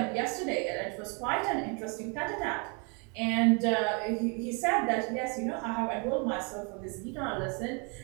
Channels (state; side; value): quieter; left; 34.6 dB